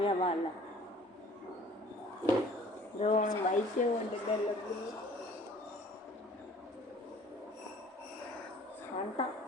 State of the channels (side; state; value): both; normal; correlation 0.52